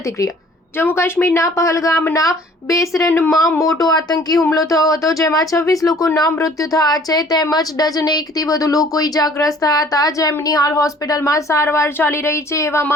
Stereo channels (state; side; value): normal; both; correlation 0.54